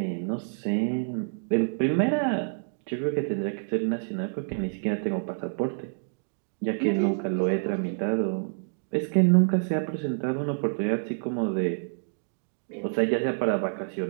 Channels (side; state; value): left; silent; digital silence